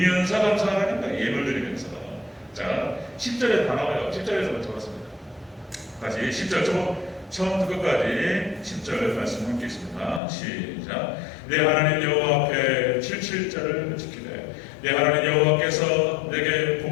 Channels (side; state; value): right; drops out; at 10.2 s